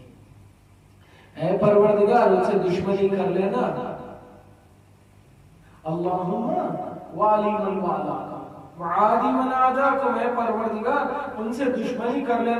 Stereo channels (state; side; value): identical; both; correlation 1.00